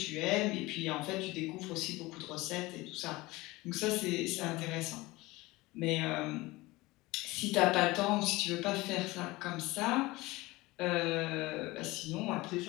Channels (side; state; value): right; quieter; 20.8 dB